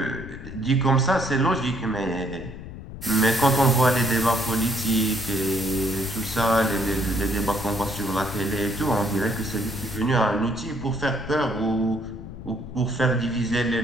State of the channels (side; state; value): left; noise; rumble, 12 dB below the sound